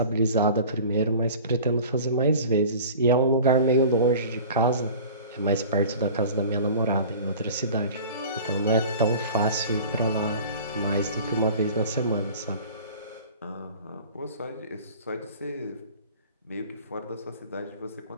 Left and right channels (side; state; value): both; inverted; correlation -0.41